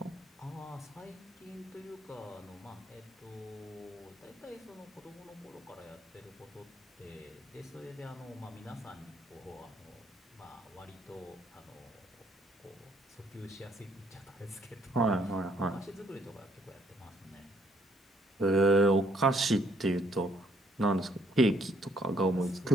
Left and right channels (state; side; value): normal; both; correlation 0.68